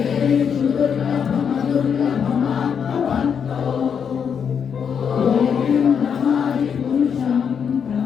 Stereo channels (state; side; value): quieter; right; 7.2 dB